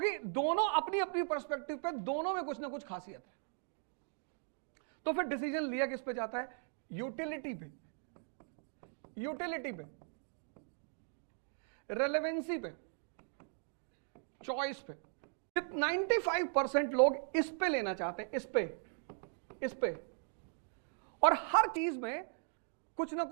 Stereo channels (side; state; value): left; silent; 52 dB below the other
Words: दोनों अपनी अपनी पर्सपेक्टिव पे दोनों में कुछ ना कुछ खासियत है। तो फिर डिसीजन लिया किस पे जाता है? यूटिलिटी पे, यूटिलिटी पे, रेलेवेंसी पे, चॉइस पे। 95% लोग इस पे लेना चाहते हैं, इस पे, और हर चीज में कुछ ना